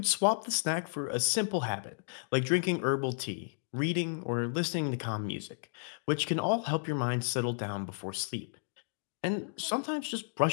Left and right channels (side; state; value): right; silent; digital silence